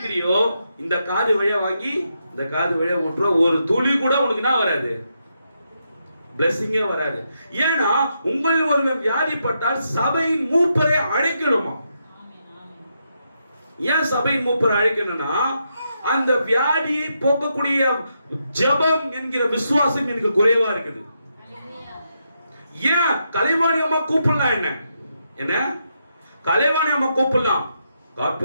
இந்த காது வழியா வாங்கி இந்த காது வழியா விட்டுற ஒரு துளி கூட உனக்கு என்ன வராது? பிளஸிங்கே வராது. ஏன்னா உங்கள் ஒருவன் வியாதிப்பட்டால் சபையின் மூப்பரை அழைக்கணுமா? ஏன் சபையின் மூப்பரை அழைக்கணும்னா அந்த வியாதியை போக்கக்கூடிய ஜெபம் என்கிற விசுவாசம் எனக்கு குறைவா இருக்குது. ஏன் கலைவாணி அம்மா கூப்பிடலாம்? என்ன கலைவாணி அம்மா கூப்பிடலாம், காட்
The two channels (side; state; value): both; inverted; correlation -0.82